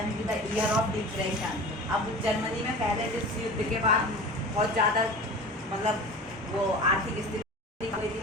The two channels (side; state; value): both; normal; correlation 0.36